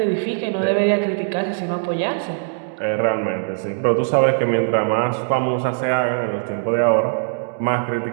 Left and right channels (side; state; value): left; silent; digital silence